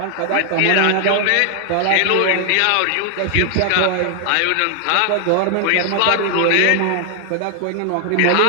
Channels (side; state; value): both; different; correlation 0.00